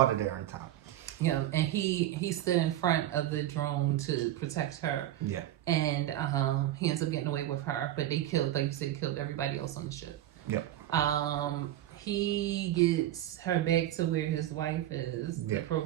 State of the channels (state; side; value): quieter; left; 13.1 dB